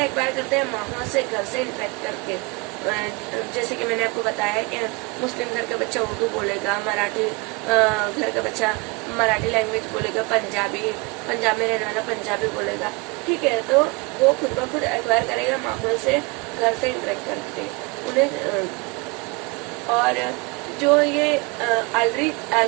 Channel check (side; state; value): left; quieter; 27.6 dB